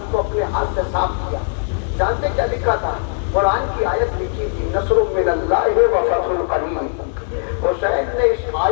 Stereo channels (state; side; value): silent; right; digital silence